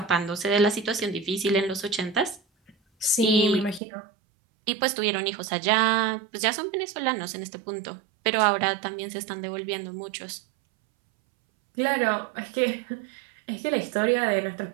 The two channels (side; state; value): left; drops out; at 3.8 s